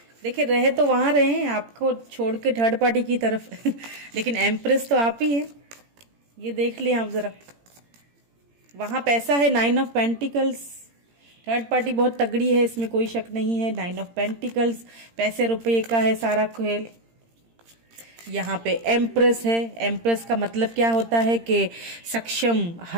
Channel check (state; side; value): late; left; 17 ms